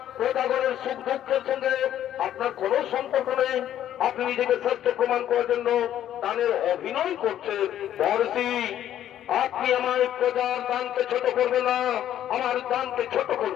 প্রজাগণের সুখ দুঃখের সঙ্গে আপনার কোন সম্পর্ক নেই, আপনি নিজেকে শ্রেষ্ঠ প্রমাণ করার জন্য দানের অভিনয় করছেন। মহর্ষি আপনি আমার প্রজার দানকে ছোট করবেন না, আমার দানকে ছোট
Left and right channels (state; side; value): quieter; right; 11.3 dB